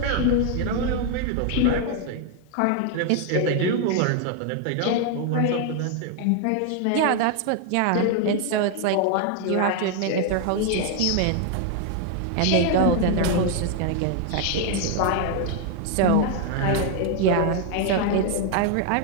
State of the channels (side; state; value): both; different; correlation 0.00